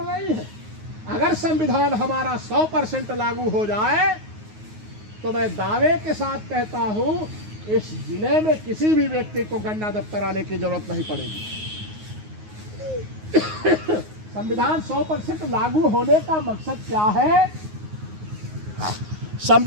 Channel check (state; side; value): late; left; 9.5 ms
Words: है। अगर संविधान हमारा 100% लागू हो जाए तो मैं दावे के साथ कहता हूं इस जिले में किसी भी व्यक्ति को गन्ना दफ्तर आने की जरूरत नहीं पड़ेगी। संविधान 100% लागू होने का मकसद क्या है?